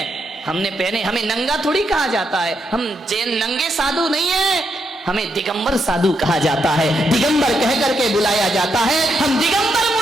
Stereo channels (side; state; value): both; normal; correlation 0.80